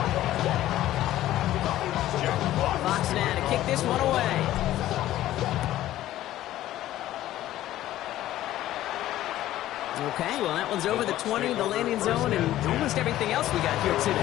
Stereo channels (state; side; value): quieter; right; 14.0 dB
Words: Fox now to kick this one away. Okay, well, that one's over the 20, the landing zone, and almost everything else we got here